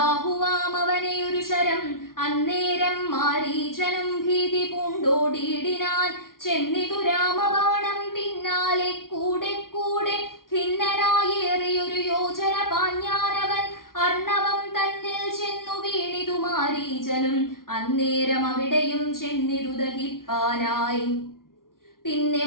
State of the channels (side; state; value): right; late; 0.92 ms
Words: ഒരു ശരം. അന്നേരം മാരീചനും ഭീതി പൂണ്ടോടി ഓടിയിടിനാൻ. ചെന്നിതു രാമബാണം പിന്നാലെ കൂടെ കൂടെ ഖിന്നനായേറിയൊരു യോജന പാഞ്ഞാനവൻ. അർണവം തന്നിൽ ചെന്നു വീണിതു മാരീചനും. അന്നേരം അവിടെയും ചെന്നിതു ദഹിപ്പാനായി. പിന്നെ